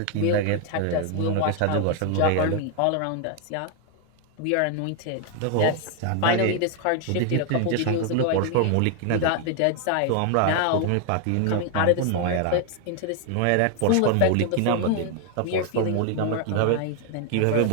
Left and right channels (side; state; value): both; different; correlation 0.00